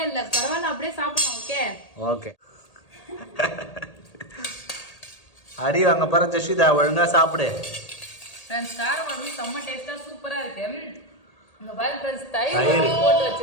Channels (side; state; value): right; late; 1.8 ms